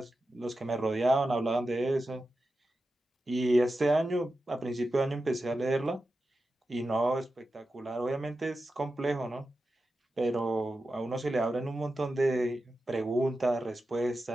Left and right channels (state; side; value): normal; both; correlation 0.91